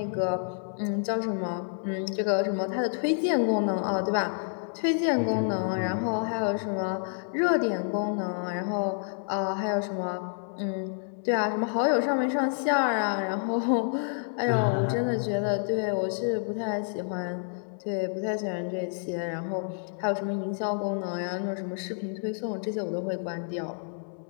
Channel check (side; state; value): right; silent; digital silence